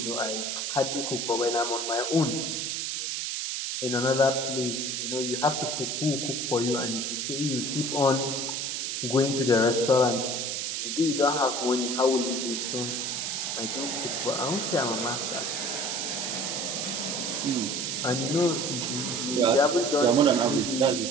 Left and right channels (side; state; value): right; noise; hiss, 2 dB below the sound